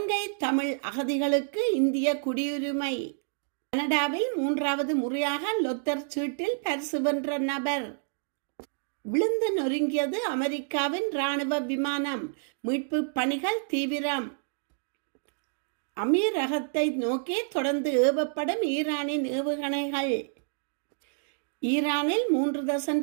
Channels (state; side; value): silent; left; digital silence